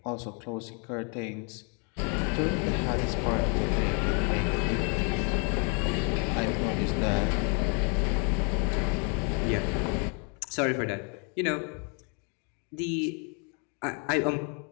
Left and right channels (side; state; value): right; quieter; 36.5 dB